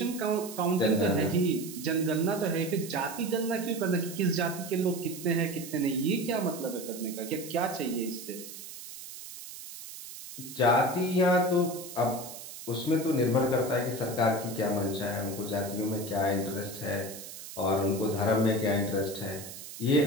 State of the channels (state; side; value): noise; right; hiss, 12 dB below the sound